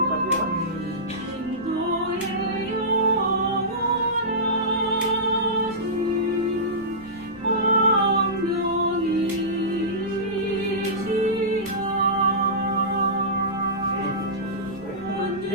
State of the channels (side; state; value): left; noise; rumble, 26 dB below the sound